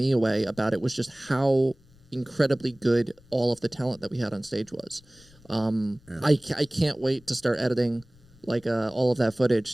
away about it was just how incredibly good all of the talent that we had on stage was. I can't wait to start editing like all of that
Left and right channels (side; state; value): left; noise; rumble, 27 dB below the sound